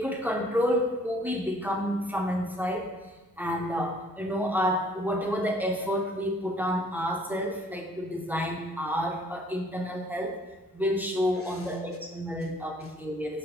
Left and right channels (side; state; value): both; normal; correlation 0.58